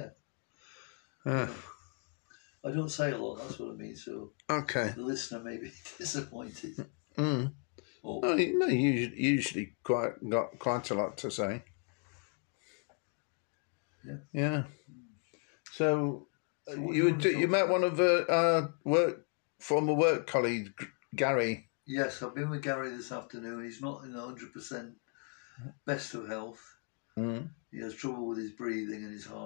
I don't say a lot. That's what I mean. So Okay. the listener may be disappointed. No, you usually got quite a lot to say. Yeah. So you met one of our former work colleagues, Gary. Yes, I've been with Gary this afternoon. He's not in 100% best of health. He has trouble with his breathing and his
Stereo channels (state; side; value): quieter; right; 39.3 dB